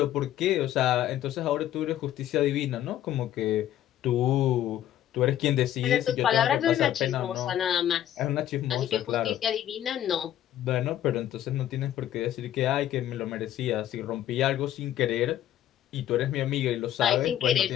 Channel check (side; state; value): right; quieter; 11.9 dB